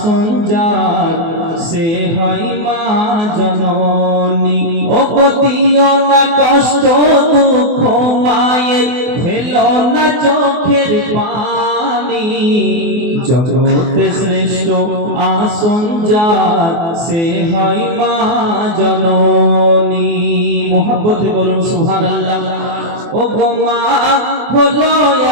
যার সে হয় মা জননী। ও পতিও না কষ্ট দুঃখ মায়ের, ফেলো না চোখের পানি। জগতে শ্রেষ্ঠ আসন যার সে হয় মা জননী। মোহাব্বতে বলুন সুবহানাল্লাহ। ও গো মা হলো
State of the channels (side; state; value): left; late; 24 ms